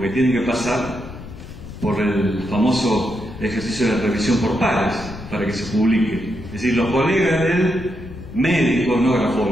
tienen que pasar por el famoso ejercicio de revisión por pares para que se publique. Es decir, los colegas del médico, no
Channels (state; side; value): noise; left; rumble, 13 dB below the sound